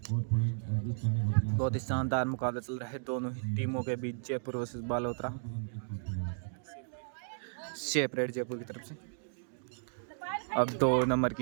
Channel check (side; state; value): left; silent; digital silence